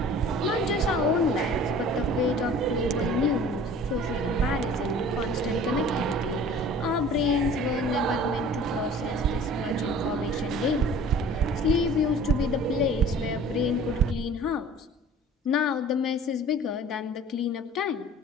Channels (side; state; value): both; normal; correlation 0.46